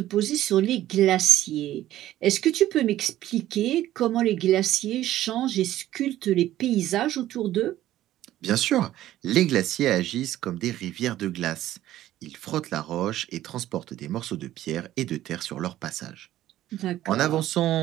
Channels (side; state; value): left; quieter; 13.8 dB